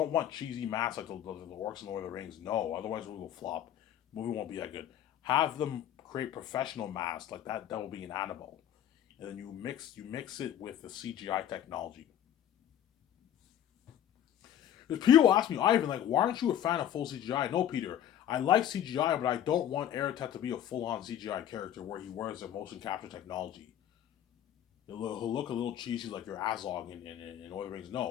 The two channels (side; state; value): right; quieter; 10.6 dB